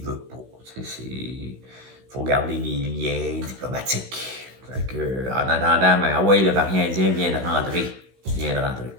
veut pas. Il faut garder les liens diplomatiques. Fait que, en attendant, ben, ah ouais, le variant indien vient de rentrer.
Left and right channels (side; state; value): left; late; 16 ms